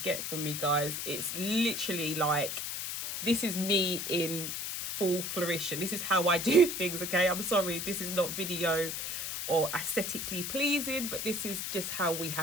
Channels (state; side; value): noise; left; hiss, 4 dB below the sound